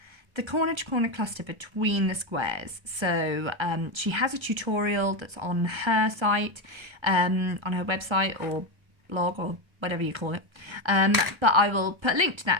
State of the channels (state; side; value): late; left; 1.3 ms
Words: the corner to corner cluster between the squares. So she has a tutorial that's on her site, on her website or blog or whatever you call it. But I will put a link to